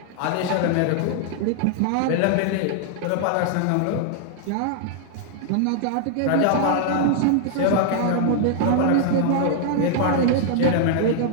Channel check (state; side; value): different; both; correlation 0.00